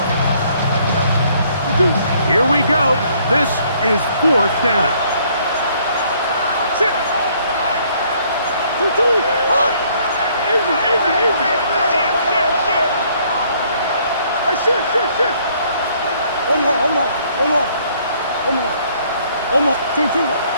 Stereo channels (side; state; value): both; inverted; correlation -0.64